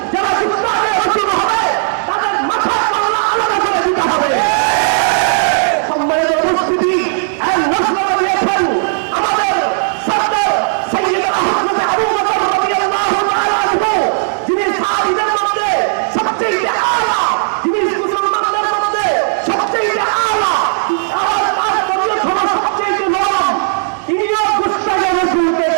যারা গুস্তাখে রাসূল হবে তাদের মাথা কল্লা আলাদা করে দিতে হবে। সম্মানিত উপস্থিতি, এক ঘোষণা দিয়েছেন আমাদের সরদার সাইয়্যিদুনা হযরত আবু বকর রাদিয়াল্লাহু তাআলা আনহু, যিনি সাহাবীদের মধ্যে সবচেয়ে আলা, যিনি মুসলমানদের মধ্যে সবচেয়ে আলা, সবচেয়ে নরম, তিনিও গুস্তাখে রাসূলকে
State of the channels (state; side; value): silent; left; digital silence